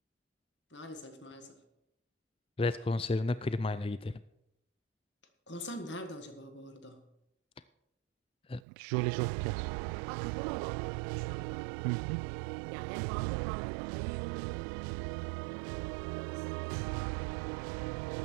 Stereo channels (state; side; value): drops out; left; at 8.7 s